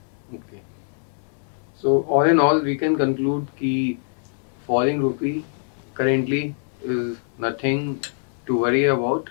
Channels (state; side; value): silent; right; digital silence